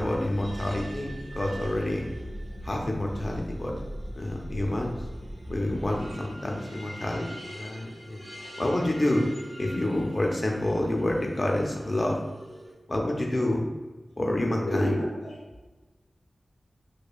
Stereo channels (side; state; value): both; normal; correlation 0.97